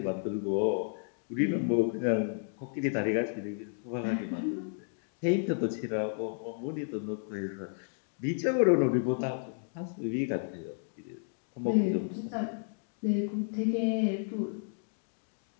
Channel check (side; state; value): right; silent; digital silence